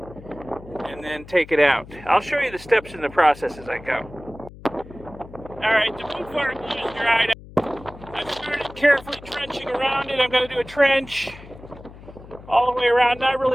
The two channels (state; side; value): noise; left; hum, 18 dB below the sound